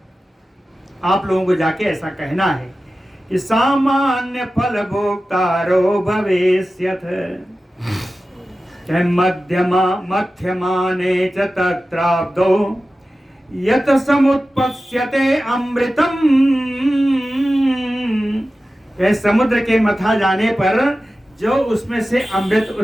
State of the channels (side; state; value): both; normal; correlation 0.94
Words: आप लोगों को जाके ऐसा कहना है कि सामान्य फल भोक्तारो भवेष्यथ। मध्यमा मध्यमाने च तत्राब्दो यत समुत्पत्स्यते अमृतम। समुद्र के मथा जाने पर जो उसमें से अमृत